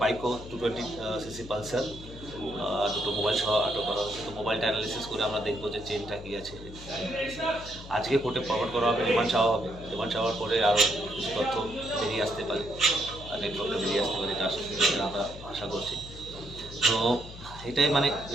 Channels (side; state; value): left; noise; hum, 14 dB below the sound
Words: বাইকও 220cc পালসার, দুটো মোবাইল সহ আটক করা হয়েছে। তো মোবাইলটা অ্যানালিসিস করে আমরা দেখবো যে চেনটা কী আছে। আজকে কোর্টে ফরওয়ার্ড করা হবে, রিমান্ড চাওয়া হবে। রিমান্ড চাওয়ার পরে আরও কিছু তথ্য বেরিয়ে আসতে পারে, নেটওয়ার্কটা বেরিয়ে আসতে পারে, এটা আমরা আশা করছি। তো এটাই মানে